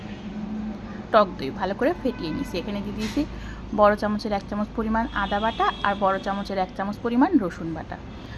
টক দই ভালো করে ফেটিয়ে নিয়েছি। এখানে দিয়ে দিয়েছি বড় চামচের 1 চামচ পরিমাণ আদা বাটা আর বড় চামচের 1 চামচ পরিমাণ রসুন বাটা।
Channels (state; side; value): identical; both; correlation 1.00